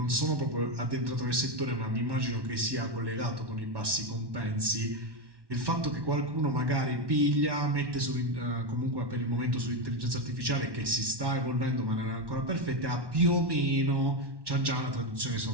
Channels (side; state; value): left; late; 1.1 ms